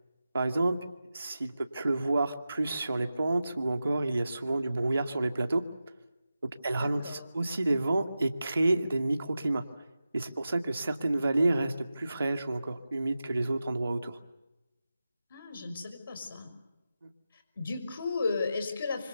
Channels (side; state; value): both; inverted; correlation -0.92